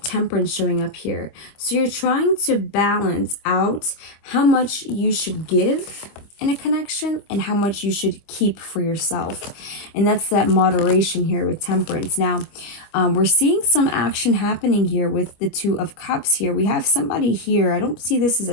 Temperance showing up here. So you're trying to balance out how much you should give in a connection and how much you should keep for yourself. And that's that moderation here with Temperance. Now, we're seeing some action happening here with the Two of Cups here. We have somebody here. I don't see this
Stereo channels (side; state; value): right; late; 25 ms